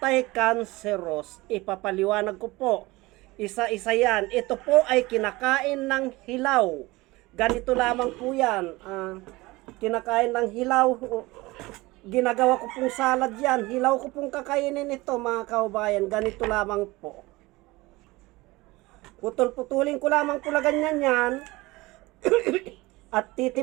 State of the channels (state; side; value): quieter; left; 21.1 dB